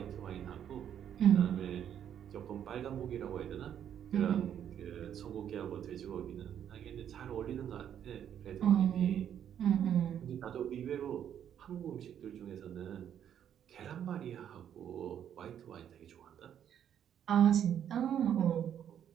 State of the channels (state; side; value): quieter; left; 9.5 dB